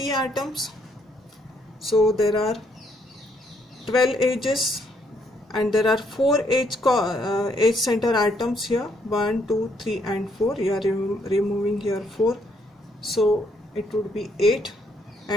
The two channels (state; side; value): normal; both; correlation 0.71